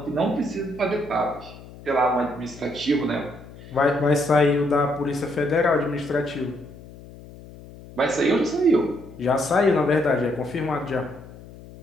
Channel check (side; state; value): left; noise; hum, 18 dB below the sound